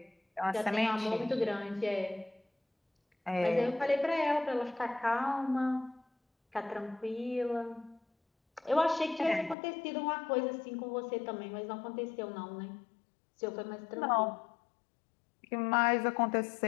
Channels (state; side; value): drops out; right; at 9.6 s